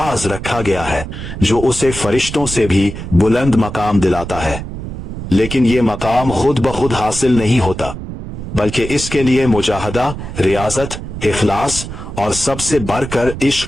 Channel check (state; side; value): noise; right; rumble, 9 dB below the sound